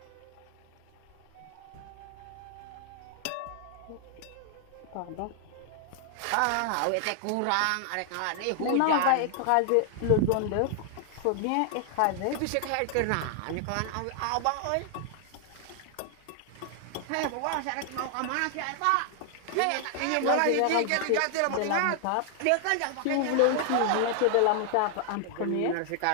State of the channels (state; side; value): different; both; correlation 0.00